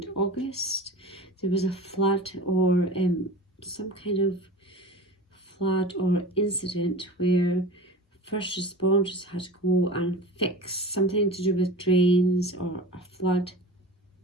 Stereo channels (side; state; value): both; normal; correlation 0.34